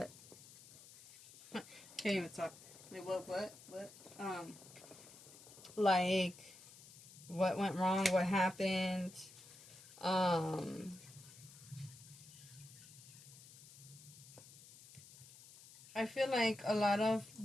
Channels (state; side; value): noise; left; hiss, 19 dB below the sound